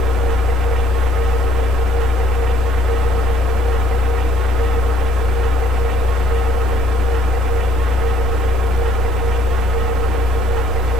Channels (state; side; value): normal; both; correlation 0.63